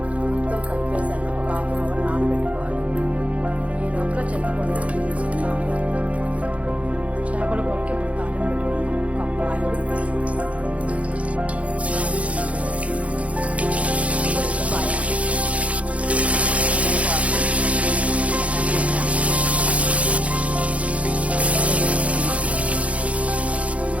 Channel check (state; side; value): late; left; 0.064 ms